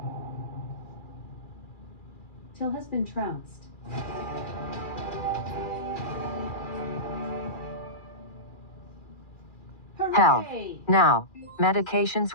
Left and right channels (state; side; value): late; right; 2.4 ms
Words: Till has been trounced. Hell. Hooray! Now. Medications